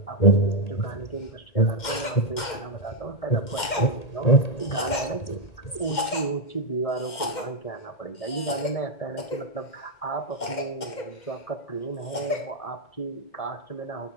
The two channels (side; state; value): right; late; 2.1 ms